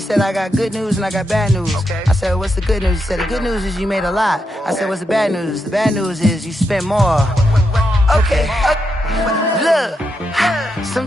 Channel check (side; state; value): both; normal; correlation 0.83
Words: I got good news and I got bad news. I said, what's the good news? He said, the good news is you made a lot. I said, what's the bad news? The bad news is you spent more. Okay, look,